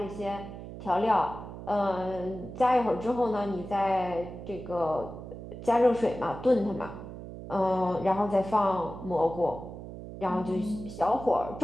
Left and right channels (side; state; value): right; noise; hum, 11 dB below the sound